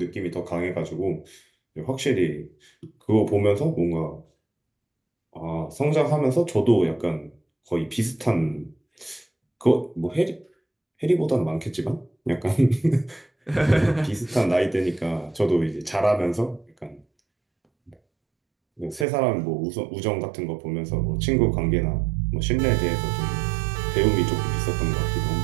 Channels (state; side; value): drops out; left; at 19.1 s